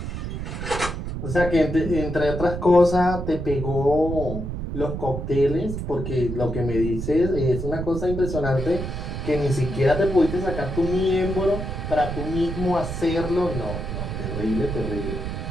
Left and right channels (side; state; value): right; noise; rumble, 5 dB below the sound